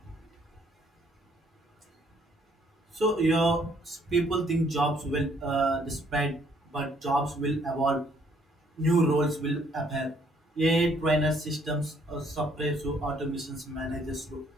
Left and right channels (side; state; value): both; normal; correlation 0.65